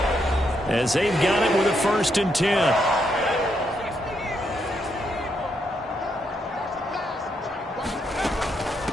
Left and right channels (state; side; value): normal; both; correlation 0.78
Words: as they've got it with a 1st and 10.